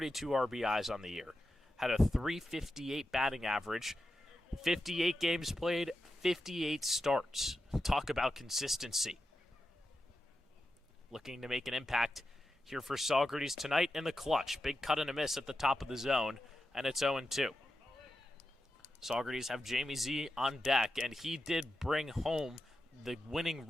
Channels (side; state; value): both; normal; correlation 0.90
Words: RBIs on the year. Had a .358 batting average. 58 games played, 58 starts. Talk about consistency. Looking to make an impact here for Saugerties tonight in the clutch. Big cut and a miss at the top of the zone, and it's 0-2. Saugerties have Jamie Z on deck, and he did bring home the winning